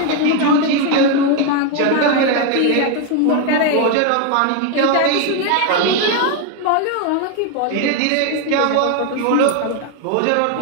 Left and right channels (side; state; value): both; different; correlation 0.01